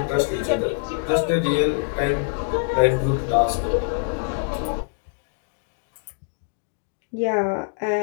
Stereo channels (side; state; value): right; silent; 56 dB below the other